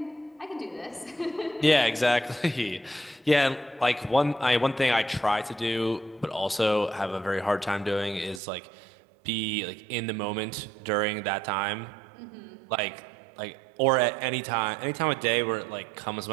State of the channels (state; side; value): drops out; left; at 8.4 s